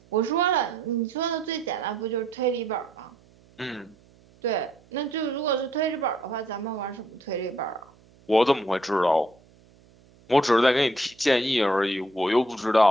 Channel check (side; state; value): right; noise; hum, 29 dB below the sound